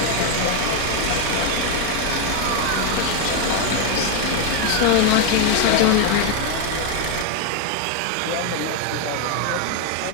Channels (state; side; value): different; both; correlation 0.01